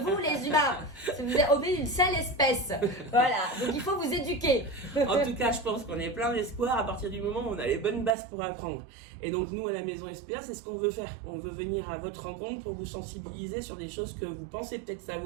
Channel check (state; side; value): drops out; left; at 8.2 s